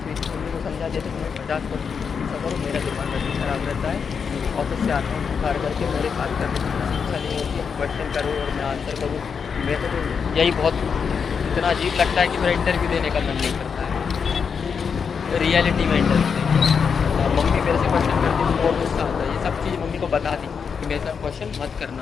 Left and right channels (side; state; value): right; quieter; 6.3 dB